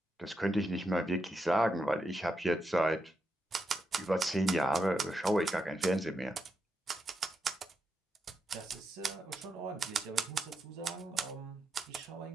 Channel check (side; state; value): both; normal; correlation 0.83